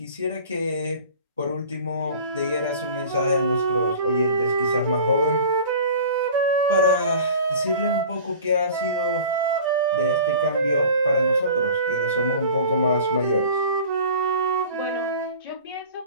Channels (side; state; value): both; inverted; correlation -0.41